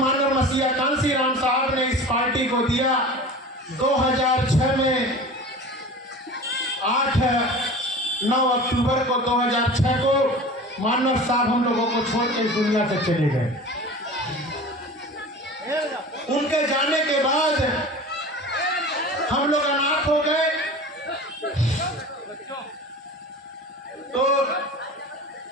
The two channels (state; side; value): normal; both; correlation 0.37